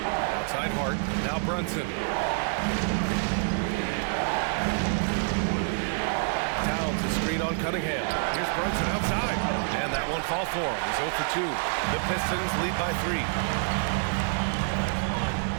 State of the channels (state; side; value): silent; left; digital silence